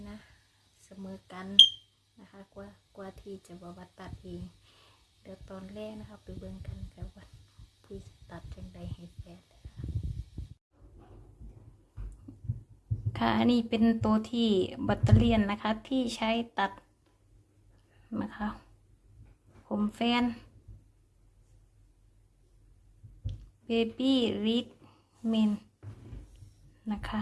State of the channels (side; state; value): both; identical; correlation 1.00